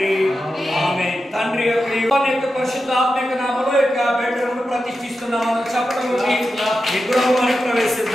ఆమేన్. తండ్రి యొక్క పరిశుద్ధ ఆత్మ యొక్క నామములో యొక్క బెడ్రూమ్ను ప్రతిష్ఠిస్తున్నాం. చెప్పడం ఈ గృహంలోకి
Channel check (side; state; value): both; normal; correlation 0.90